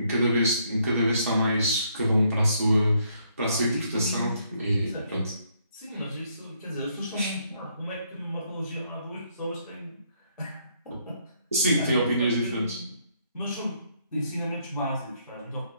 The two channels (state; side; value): inverted; both; correlation -0.71